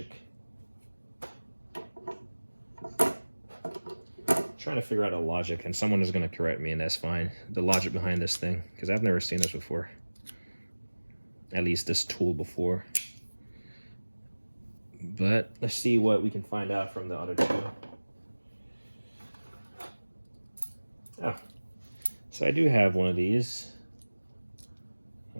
Trying to figure out a logic, and someone is going to correct me, and that's fine. The logic behind this thing, because I've never seen this before. At least this tool before. But let's see what we can find out from the other two. Oh, so I do have one of these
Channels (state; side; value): inverted; both; correlation -1.00